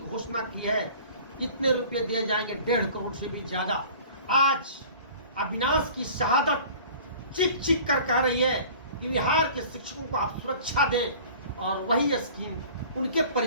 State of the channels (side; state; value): both; inverted; correlation -0.45